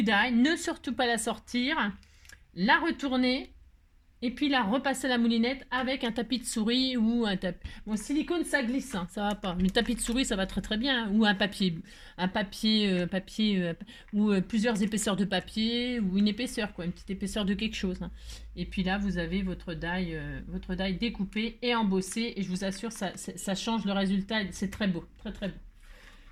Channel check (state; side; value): identical; both; correlation 1.00